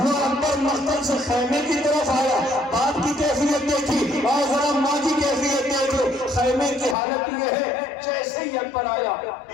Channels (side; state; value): right; drops out; at 7.0 s